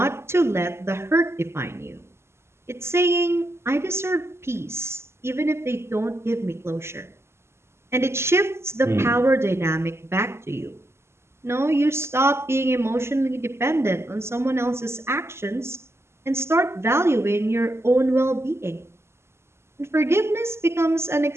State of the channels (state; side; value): late; left; 0.12 ms